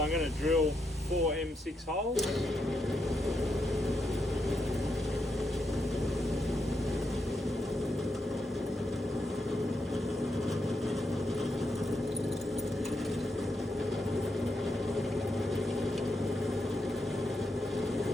I'm going to drill 4 M6 holes.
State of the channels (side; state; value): both; normal; correlation 0.82